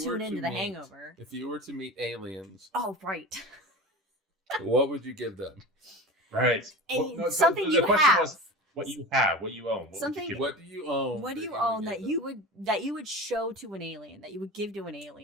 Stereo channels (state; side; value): normal; both; correlation 0.32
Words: into The Hangover. If you were to meet aliens. Oh, right. What would you give them? Right. Something you have. What you have, what you own. What do you own? What do you own that you would show to an alien, that you would give to an